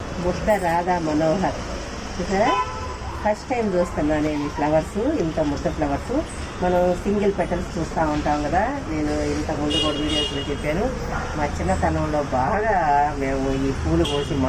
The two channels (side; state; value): both; identical; correlation 1.00